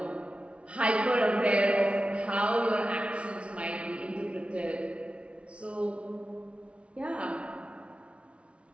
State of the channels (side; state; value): left; late; 0.060 ms